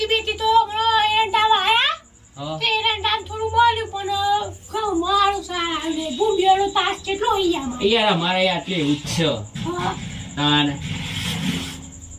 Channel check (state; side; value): identical; both; correlation 1.00